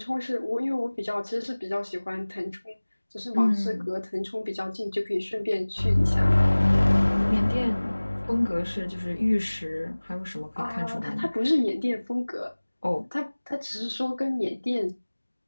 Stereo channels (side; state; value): both; inverted; correlation -1.00